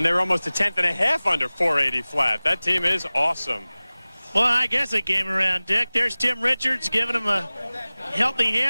they were almost a 1/10.5 under 480 flat. That team is awesome. Well, I guess it came around, Dick. There's Tim Richards giving him a healthy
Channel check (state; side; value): inverted; both; correlation -0.99